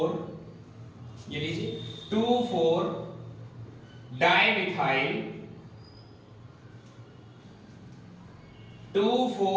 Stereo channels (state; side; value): identical; both; correlation 1.00